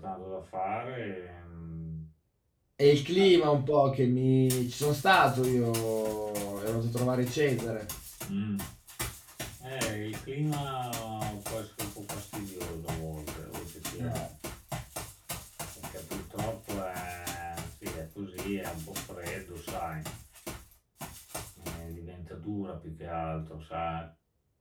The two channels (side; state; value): both; identical; correlation 1.00